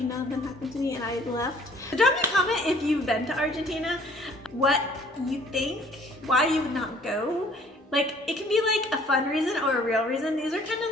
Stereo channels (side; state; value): both; normal; correlation 0.56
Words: none of them happened to me and I left. So drop me a comment if you've been to Argentina, what you think, why you would not go. Like, it can be like a fun reason or a real reason. These are kind of